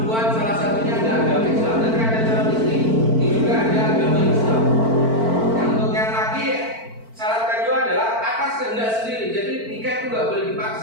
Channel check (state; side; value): late; left; 4.5 ms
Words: salah satunya ada agama Islam. Nanti ada calon istri, ini juga ada agama Islam. Yang untuk yang laki, syarat kedua adalah atas kehendak sendiri. Jadi nikah itu nggak boleh